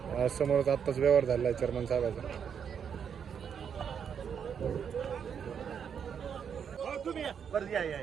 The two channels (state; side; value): quieter; left; 7.5 dB